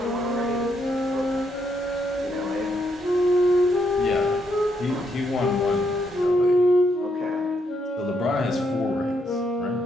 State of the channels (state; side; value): normal; both; correlation 0.76